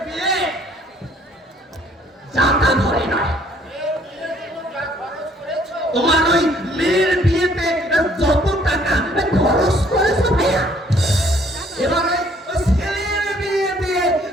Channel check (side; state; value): both; normal; correlation 0.62